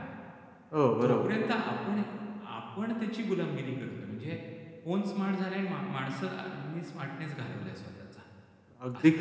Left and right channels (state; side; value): identical; both; correlation 1.00